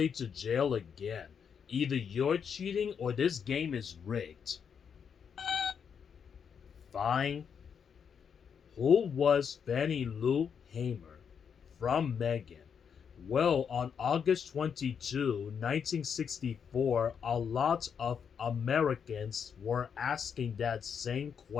to jail again. Either you're cheating or this game is rigged. Fine. Who was Fannie Lou Hamer? From Megan. Well, on August 22, 1964, a lot of Americans were asking that same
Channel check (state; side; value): quieter; right; 7.1 dB